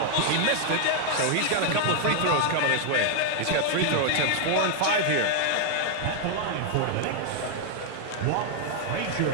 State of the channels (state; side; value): different; both; correlation 0.00